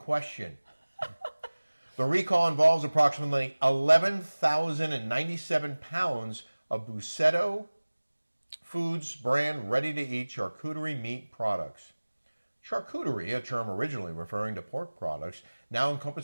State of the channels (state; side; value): inverted; both; correlation -1.00